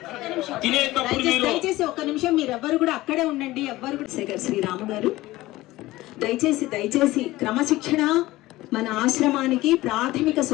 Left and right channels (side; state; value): right; quieter; 17.9 dB